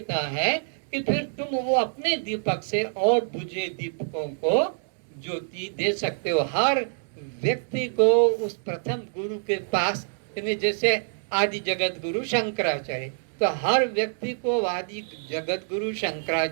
है कि फिर तुम वो अपने दीपक से और बुझे दीपकों को ज्योति दे सकते हो। हर व्यक्ति को उस प्रथम गुरु के पास, जैसे आदि जगत गुरु शंकराचार्य, तो हर व्यक्ति को आदि जगत गुरु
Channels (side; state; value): left; silent; digital silence